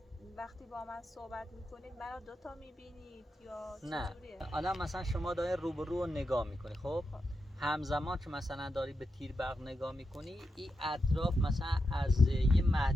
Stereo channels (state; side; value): normal; both; correlation 0.87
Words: وقتی با من صحبت میکنید منو دوتا میبینید یا نه چجوریه؟ الان مثلا شما داری روبرو رو نگاه میکنی، خب همزمان که مثلا داری به تیر برق نگاه میکنی، این اطراف مثلا از یه